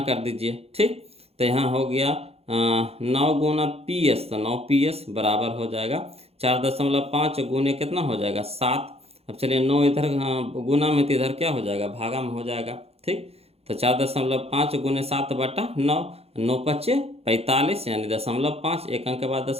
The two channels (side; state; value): left; late; 0.29 ms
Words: कर दीजिए। ठीक। तो यहाँ हो गया 9 गुना पी एस, तो 9 पी एस बराबर हो जाएगा 4.5 गुने कितना हो जाएगा 7। अब चलिए 9 इधर गुना में तो इधर क्या हो जाएगा भागा में हो जाएगा। ठीक। तो 4.5 गुने 7 बटा 9, 9 पच्चे 45 यानी 0.5, एक अंक के बाद